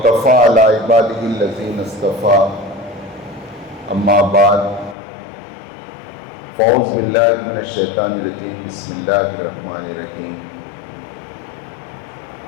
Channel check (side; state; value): right; drops out; at 5.0 s